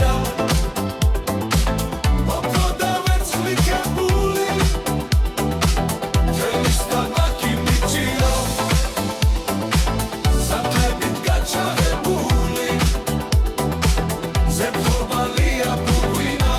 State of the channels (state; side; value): identical; both; correlation 1.00